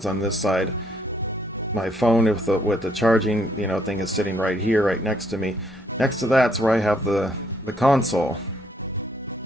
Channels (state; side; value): normal; both; correlation 0.69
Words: on this side. My phone with the charging, thing is sitting right here, right next to me. Next to that's where I have the console.